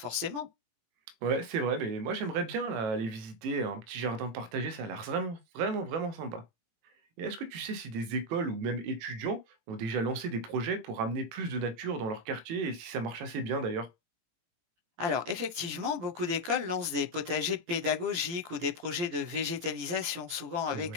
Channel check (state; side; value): late; left; 18 ms